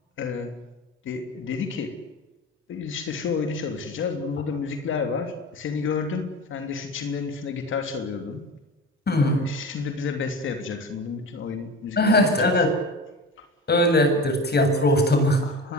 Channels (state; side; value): normal; both; correlation 0.31